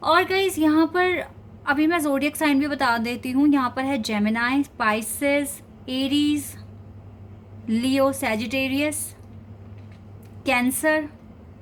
और गाइज यहाँ पर अभी मैं ज़ोडिएक साइन भी बता देती हूँ। यहाँ पर है जेमिनाई, स्पाइसेस, एरीज, लियो, सैजिटेरियस, कैंसर,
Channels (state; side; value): identical; both; correlation 1.00